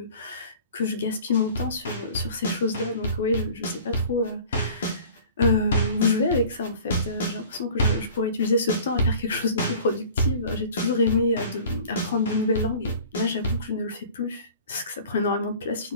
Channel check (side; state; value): both; inverted; correlation -0.45